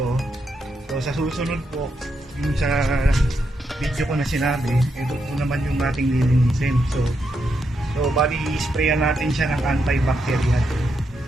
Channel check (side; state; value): both; normal; correlation 0.82